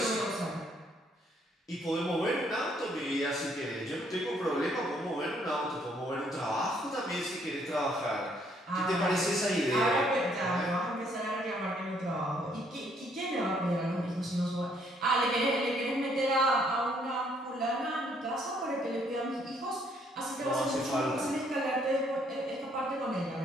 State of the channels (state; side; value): normal; both; correlation 0.67